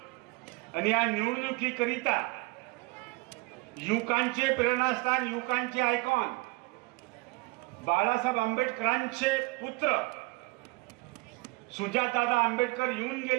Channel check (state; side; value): quieter; left; 25.0 dB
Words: आणि या निवडणुकीकरिता युवकांचे प्रेरणास्थान, युवकांचे आयकॉन बाळासाहेब आंबेडकरांचे पुत्र सुजातदादा आंबेडकर येऊन